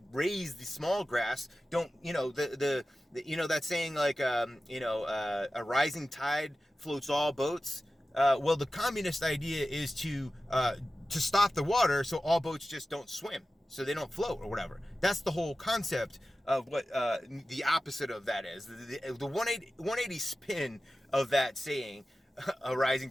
raise the small grass. Don't, you know, the that saying, like, a rising tide floats all boats. Well, the communist idea is to stop the water so all boats just don't swim, so they don't float or whatever. That's the whole concept of what the opposite of that is. The 180 spin of that saying, a rising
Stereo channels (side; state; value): both; normal; correlation 0.95